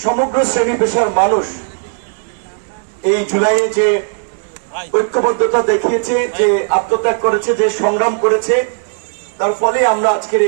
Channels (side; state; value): left; silent; digital silence